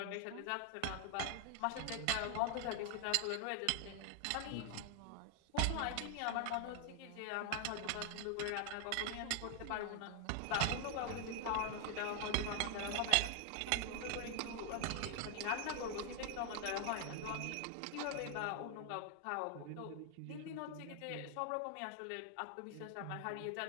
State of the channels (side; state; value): both; different; correlation 0.00